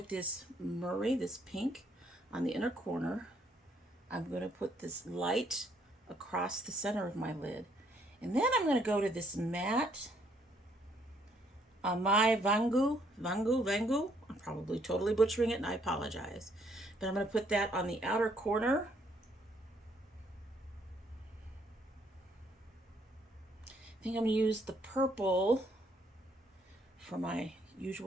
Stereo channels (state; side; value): normal; both; correlation 0.68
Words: this Murray, this pink on the inner corner. I'm going to put this light across the center of my lid. And then I'm going to go to this matte my Vangu. I'm probably totally butchering it and I apologize. But I'm going to put that on the outer corner. I think I'm going to use the purple for my